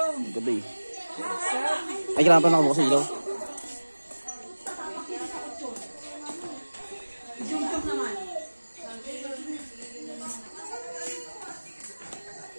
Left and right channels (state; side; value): inverted; both; correlation -1.00